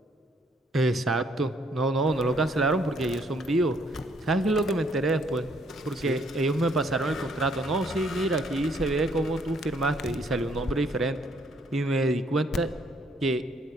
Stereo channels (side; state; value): both; normal; correlation 0.66